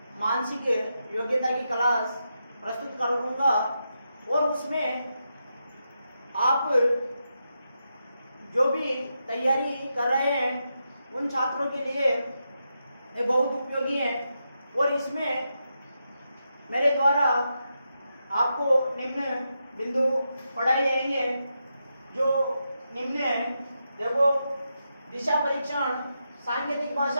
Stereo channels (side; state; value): both; inverted; correlation -0.85